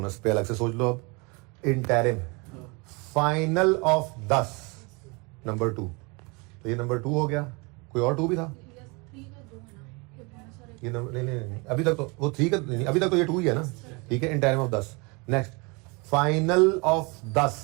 पे अलग से सोच लो अब। इंटरिम, फाइनल ऑफ 10 नंबर 2, तो ये नंबर 2 हो गया। कोई और 2 भी था? ये नंबर नहीं, अभी तक तो वो 3 का नहीं, अभी तक तो ये 2 ही है ना, ठीक है। Interim of 10। Next, final of 10,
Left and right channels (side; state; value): left; quieter; 29.0 dB